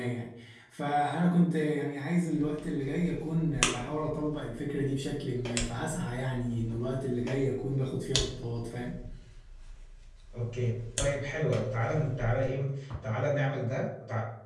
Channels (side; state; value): both; identical; correlation 1.00